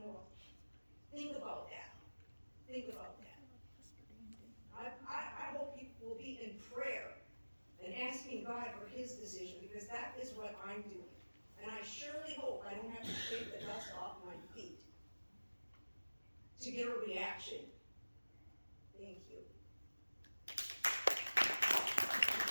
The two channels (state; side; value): inverted; both; correlation -1.00